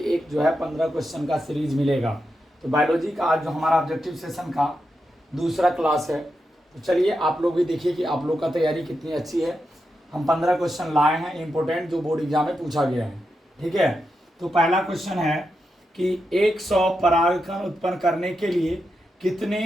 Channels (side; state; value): both; normal; correlation 0.87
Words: एक जो है 15 क्वेश्चन का सीरीज मिलेगा। तो बायोलॉजी का आज जो हमारा ऑब्जेक्टिव सेशन का दूसरा क्लास है। तो चलिए आप लोग भी देखिए कि आप लोग का तैयारी कितनी अच्छी है। हम 15 क्वेश्चन लाए हैं इम्पोर्टेंट, जो बोर्ड एग्जाम में पूछा गया है। ठीक है, तो पहला क्वेश्चन है कि 100 परागकण उत्पन्न करने के लिए कितने